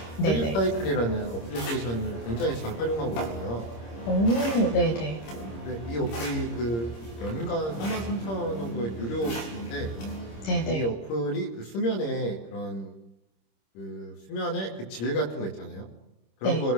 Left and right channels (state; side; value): late; right; 26 ms